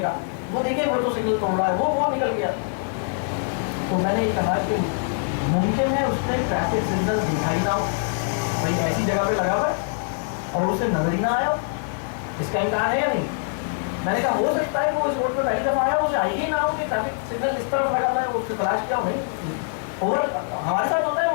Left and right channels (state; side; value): silent; right; digital silence